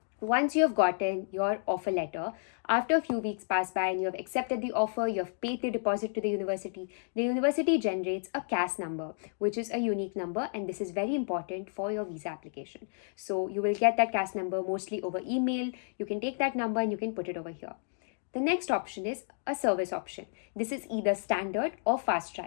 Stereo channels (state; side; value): silent; right; 57 dB below the other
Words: Once you have gotten your offer letter, after a few weeks pass by and you have accepted the offer, you have paid the deposit to the university generates a CAS number, which is a unique number, and this is very important for your visa application. So you will get that CAS number mostly over email. You can take that number and you can put it over here. The next option is a service option. This is either standard or fast